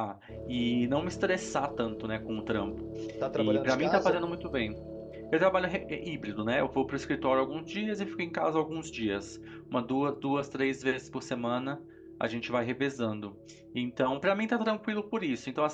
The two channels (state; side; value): identical; both; correlation 1.00